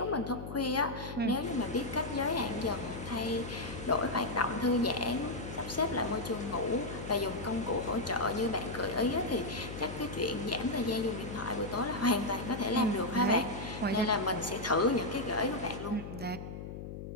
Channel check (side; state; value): left; noise; hum, 9 dB below the sound